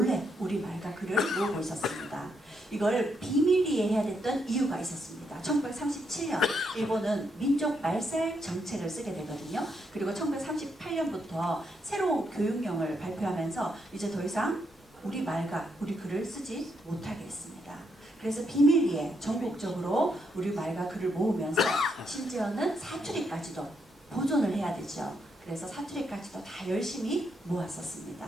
우리말과 글을 모으고 있었습니다. 이걸 비밀리에 해야 됐던 이유가 있었습니다. 1937년 일본은 민족 말살 정책을 쓰게 되거든요. 그리고 1938년부터 새로운 교육령을 발표하면서 이제 더 이상 우리말과 우리 글을 쓰지 못하게 했습니다. 그래서 비밀리에 전국적으로 우리말과 글을 모으면서 심지어는 사투리까지도 보존을 해야 되죠. 그래서 사투리까지도 다 열심히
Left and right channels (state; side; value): normal; both; correlation 0.78